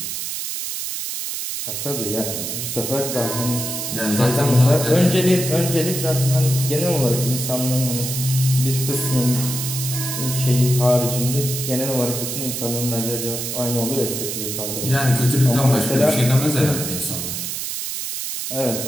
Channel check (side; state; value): right; noise; hiss, 4 dB below the sound